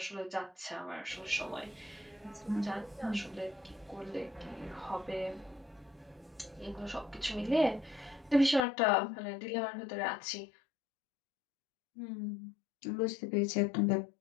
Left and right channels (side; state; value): right; drops out; at 8.7 s